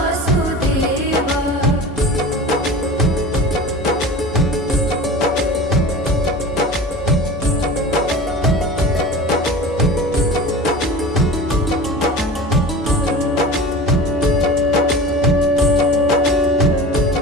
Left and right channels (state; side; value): normal; both; correlation 0.35